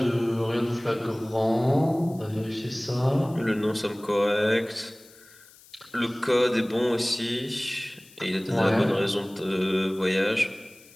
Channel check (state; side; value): noise; left; hiss, 24 dB below the sound